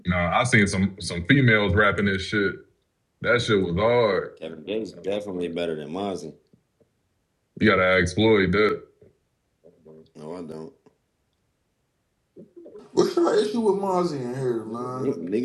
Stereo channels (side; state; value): both; identical; correlation 1.00